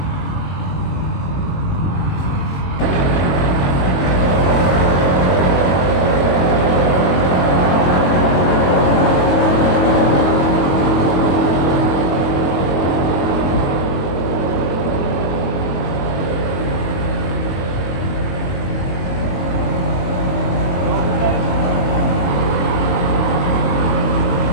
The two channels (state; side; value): late; right; 22 ms